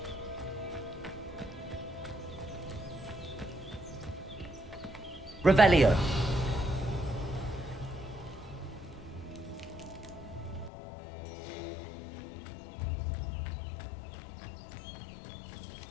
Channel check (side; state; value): right; drops out; at 10.7 s